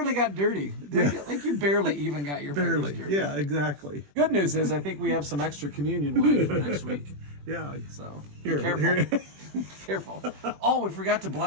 got dirty. Like you barely even got your fingers dirty. Yeah, exactly. Good news is I think we have some extra communion wine for next week. Yeah. So Here, be careful. here. Careful. Oh, we forgot to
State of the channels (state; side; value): late; left; 21 ms